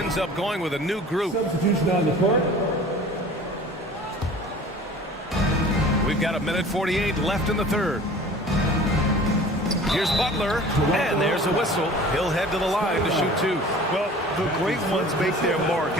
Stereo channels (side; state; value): both; normal; correlation 0.44